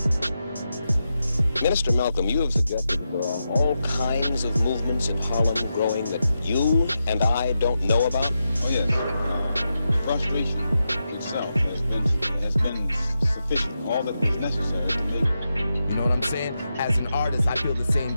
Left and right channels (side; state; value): both; inverted; correlation -0.88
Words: Minister Malcolm, you have suggested there are all kinds of movements in Harlem growing that you and I don't know about? Oh yes, frustration itself has been sufficient, all that was necessary to make. You know what I'm saying? As an artist, I feel the same